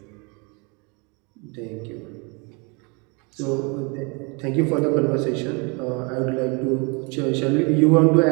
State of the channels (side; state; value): left; quieter; 31.3 dB